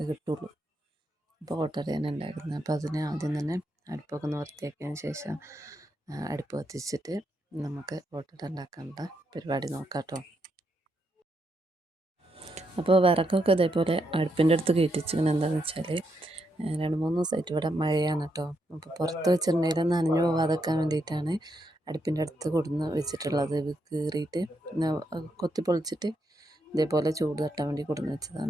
കിട്ടുള്ളൂ. അപ്പോൾ ഓട്ടടയാണ് ഉണ്ടാക്കുന്നത്. അപ്പോൾ അതിന് ആദ്യം തന്നെ അടുപ്പൊക്കെ ഒന്ന് വൃത്തിയാക്കിയതിന് ശേഷം അടുപ്പ് കത്തിച്ചിട്ട് നമുക്ക് ഓട്ടട ഉണ്ടാക്കാനുള്ള പരിപാടി നോക്കാം കേട്ടോ. അപ്പോൾ വിറകൊക്കെ ഇതേപോലെ അടുപ്പിൻ്റെ അടുത്ത് കയറ്റിച്ചിങ്ങനെ എന്താണെന്ന് വെച്ചാൽ 2-3 ദിവസമായിട്ട് ഇവിടെ മഴയാണ് കേട്ടോ. അപ്പോൾ പുറത്ത് വെച്ചിട്ടുണ്ടെങ്കിൽ നനഞ്ഞു പോകാതെക്കാൻ വേണ്ടിയിട്ടാണ് അടുപ്പിൻ്റെ അടുത്ത് കൊടുന്ന് വെച്ചിട്ടുള്ളത്. ഇത് കീറിയിട്ട് കൊത്തി പൊളിച്ചിട്ട് ഇതേപോലെ ചൂട് തട്ടാൻ വേണ്ടി കൊടുന്ന്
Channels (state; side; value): normal; both; correlation 0.80